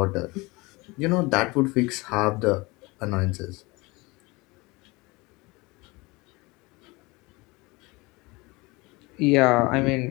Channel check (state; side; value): quieter; right; 24.3 dB